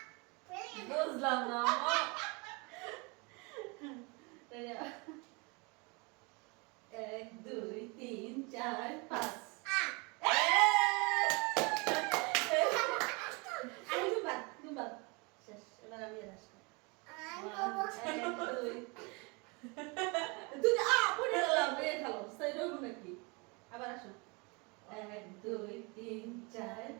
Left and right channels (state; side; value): quieter; left; 29.5 dB